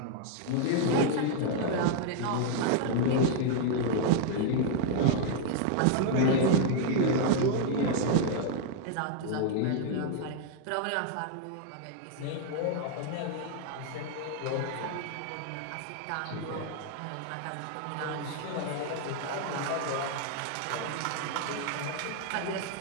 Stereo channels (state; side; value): different; both; correlation 0.00